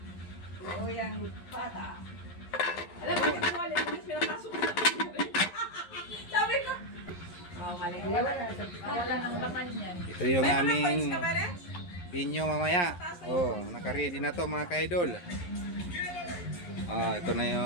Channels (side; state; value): right; late; 11 ms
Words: Oo, yung bata. Alam mo, yung wallet mo, pinapasok na. Sabi ko. Oh, mali. Wala nang laman yan. Ito yung May mga coins aming ka ba, Ren? binyo mamaya. Oh, naka-ready na to mga ka-idol. Oh, ito na